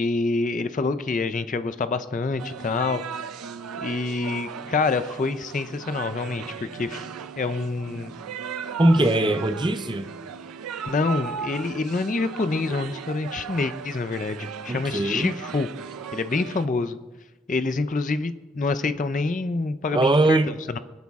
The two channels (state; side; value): normal; both; correlation 0.66